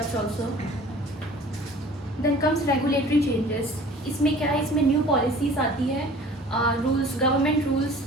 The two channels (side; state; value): both; normal; correlation 0.47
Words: also. Then comes regulatory changes. इसमें क्या है, इसमें new policies आती है, rules, government rules,